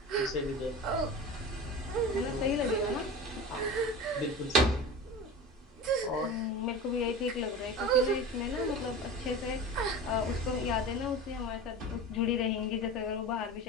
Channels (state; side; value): normal; both; correlation 0.31